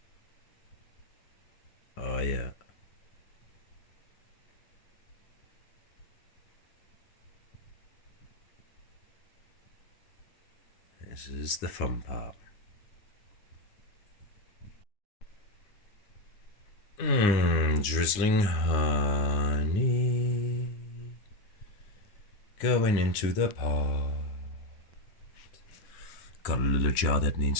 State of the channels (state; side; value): late; right; 9.6 ms